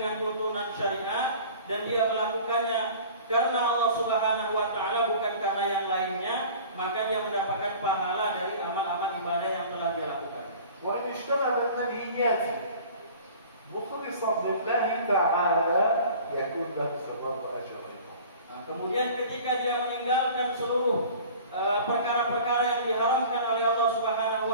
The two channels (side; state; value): both; inverted; correlation -0.44